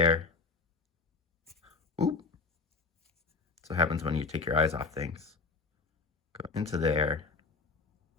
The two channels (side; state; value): right; quieter; 4.4 dB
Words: Oop. That's what happens when you take your eyes off things. Go into there